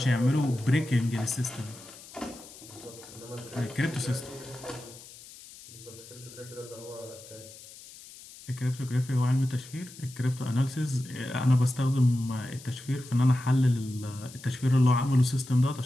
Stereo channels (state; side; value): noise; left; hiss, 18 dB below the sound